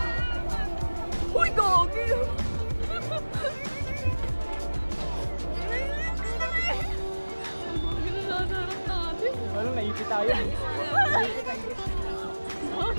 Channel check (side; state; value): both; inverted; correlation -1.00